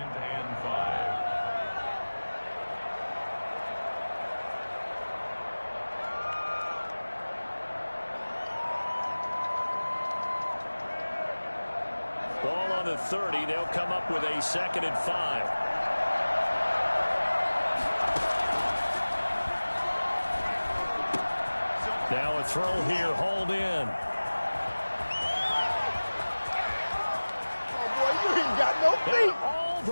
Ball on the 30. They'll come up with a 2nd and 5. Now a throw here, hauled in. Oh, boy, you ain't got no feet. All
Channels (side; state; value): both; inverted; correlation -1.00